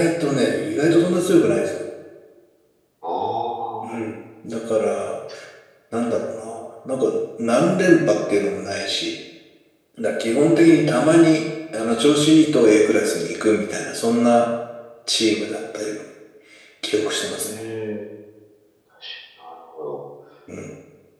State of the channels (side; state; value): both; identical; correlation 1.00